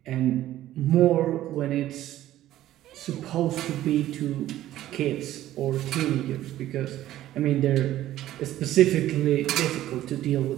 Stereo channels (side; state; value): left; quieter; 13.8 dB